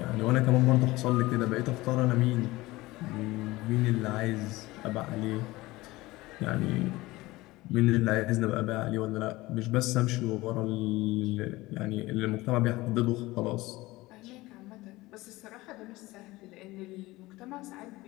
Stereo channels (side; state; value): right; quieter; 19.7 dB